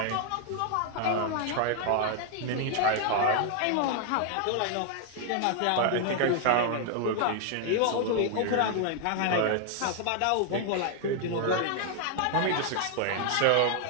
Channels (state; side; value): different; both; correlation 0.00